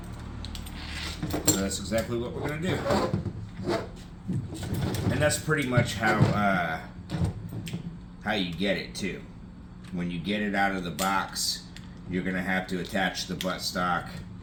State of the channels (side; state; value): both; identical; correlation 1.00